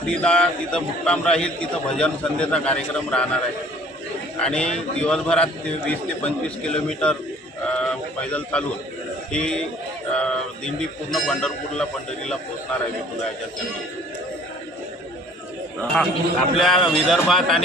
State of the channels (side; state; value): both; normal; correlation 0.53